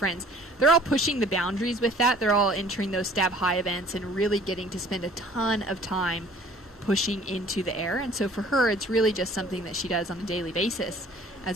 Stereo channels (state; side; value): normal; both; correlation 0.52